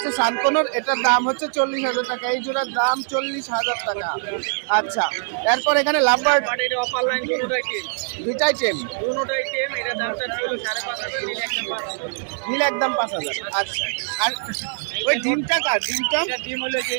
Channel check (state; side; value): silent; left; digital silence